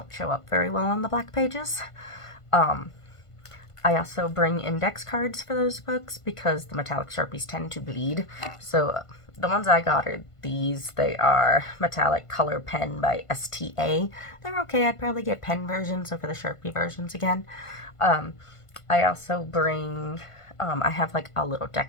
show up very well on the black pages. I also bring index cards for those books because the metallic Sharpies tend to bleed. So the ones I got are these. They are metallic color pen by STA. They're okay. I'd probably get pen versions over the Sharpie versions again. I also bring, I have like a little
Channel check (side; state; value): right; late; 1.5 ms